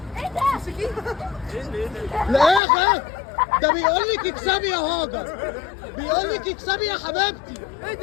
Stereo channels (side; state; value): right; drops out; at 2.6 s